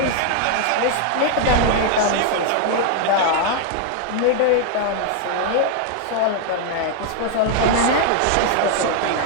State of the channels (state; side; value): different; both; correlation 0.00